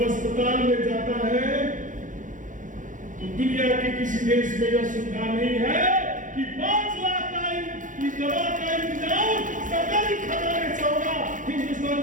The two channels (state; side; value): late; left; 0.37 ms